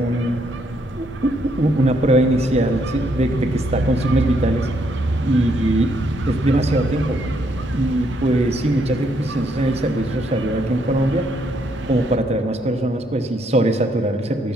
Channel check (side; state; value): both; normal; correlation 0.72